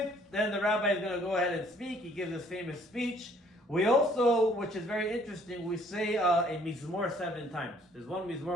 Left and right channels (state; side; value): normal; both; correlation 0.61